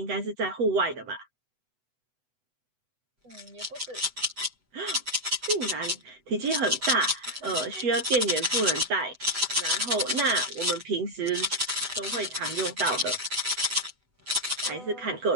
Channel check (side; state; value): left; late; 8.0 ms